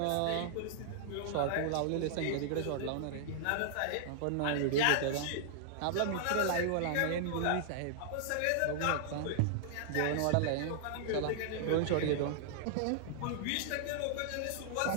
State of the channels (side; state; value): both; different; correlation -0.01